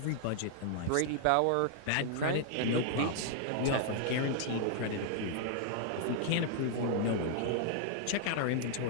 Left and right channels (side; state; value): both; different; correlation 0.00